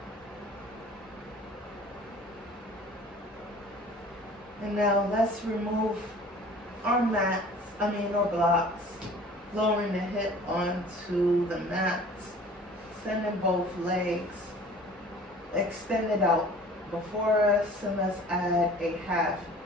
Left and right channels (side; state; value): both; normal; correlation 0.47